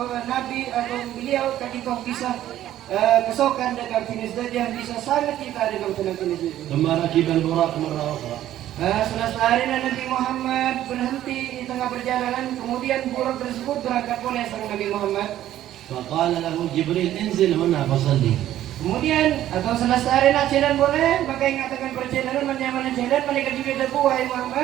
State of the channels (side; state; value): left; quieter; 12.7 dB